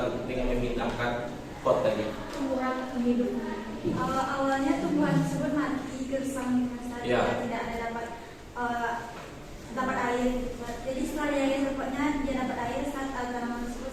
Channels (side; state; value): both; identical; correlation 1.00